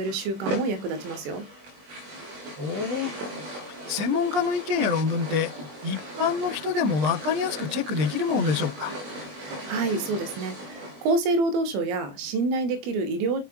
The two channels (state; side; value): late; left; 20 ms